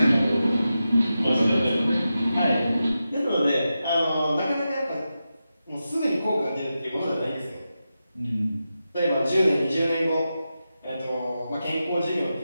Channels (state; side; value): inverted; both; correlation -0.91